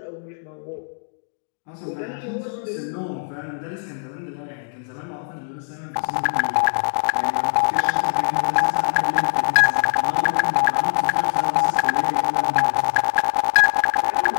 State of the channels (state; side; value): silent; right; 64 dB below the other